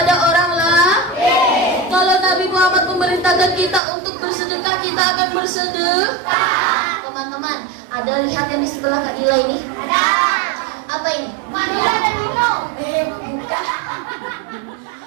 orang lain. Kalau Nabi Muhammad memerintahkan kita untuk bersedekah, kita akan bersedekah. Teman-teman, ada lihat yang di sebelah Kak Dila ini? Ada. Apa ini? Vanilla dan Milo. Bukan.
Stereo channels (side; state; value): left; drops out; at 3.8 s